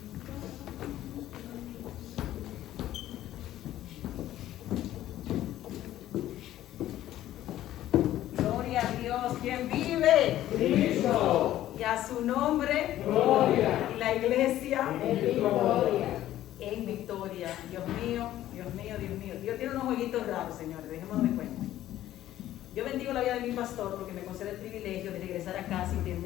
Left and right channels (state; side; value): quieter; right; 13.4 dB